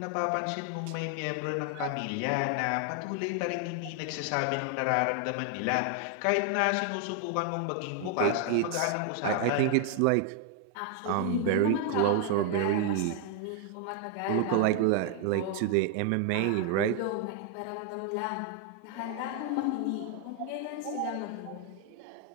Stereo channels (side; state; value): both; different; correlation 0.00